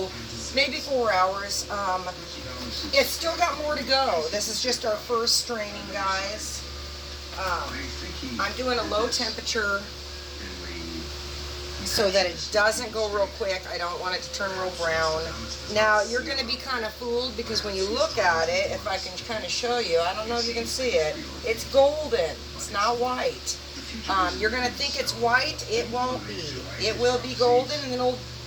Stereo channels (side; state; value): both; identical; correlation 1.00